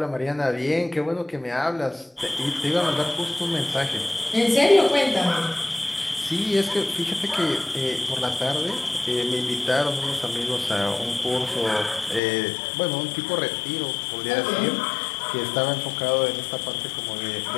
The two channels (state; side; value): drops out; right; at 12.2 s